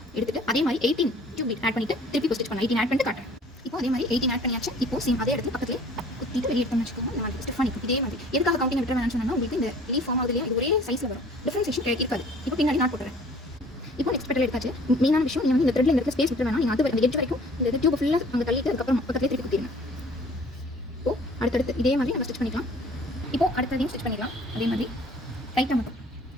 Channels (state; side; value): normal; both; correlation 0.52